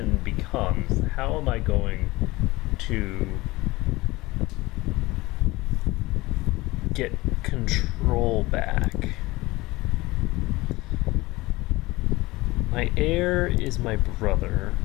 becomes, how am I going to get control back? My heir is my brother,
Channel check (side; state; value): right; quieter; 20.6 dB